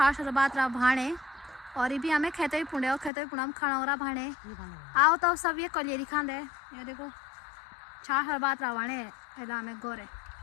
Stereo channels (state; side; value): drops out; right; at 3.1 s